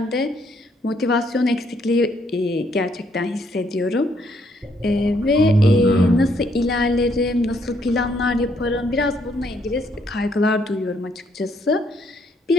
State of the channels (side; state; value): both; normal; correlation 0.71